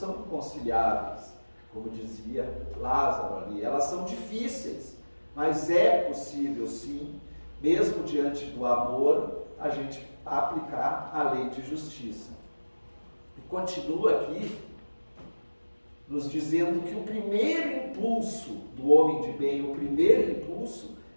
inconciliáveis, como dizia Lázaro ali. Elas são difíceis, mas é possível sim, mesmo diante do amor, a gente aplicar a lei de justiça. E continua aqui nos dizendo que o primeiro impulso do homem de bem, o primeiro impulso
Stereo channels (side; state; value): both; inverted; correlation -1.00